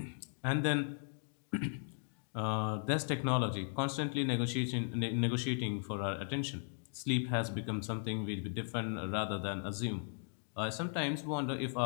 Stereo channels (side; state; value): right; silent; digital silence